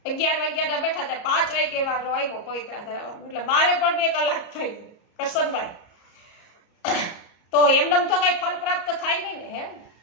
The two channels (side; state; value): right; late; 34 ms